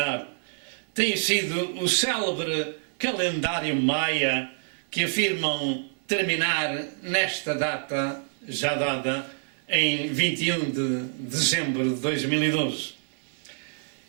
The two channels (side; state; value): left; silent; 59 dB below the other